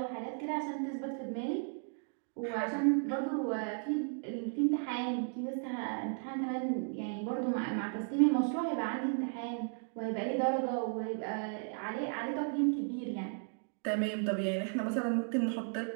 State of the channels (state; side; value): silent; left; 54 dB below the other